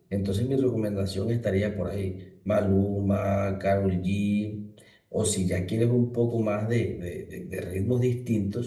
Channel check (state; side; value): identical; both; correlation 1.00